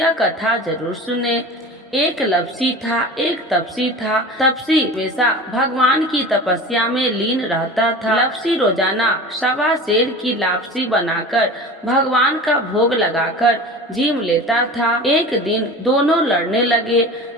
कथा जरूर सुने। एक लपसी था, एक तपसी था। तपसी हमेशा भगवान की तपस्या में लीन रहता था। लपसी रोजाना 1.25 सेर की लापसी बनाकर भगवान का भोग लगाकर जीम लेता था। एक दिन दोनों लड़ने लगे।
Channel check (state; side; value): normal; both; correlation 0.35